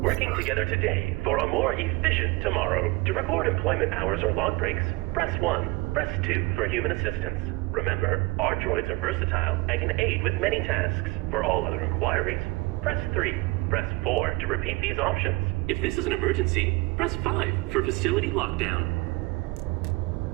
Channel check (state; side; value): quieter; left; 23.8 dB